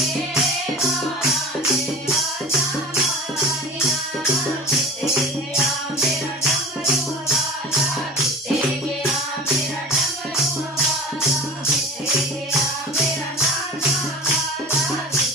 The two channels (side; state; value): both; normal; correlation 0.38